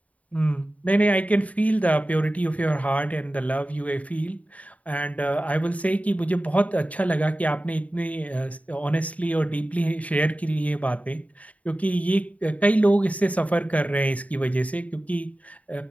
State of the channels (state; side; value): late; right; 0.069 ms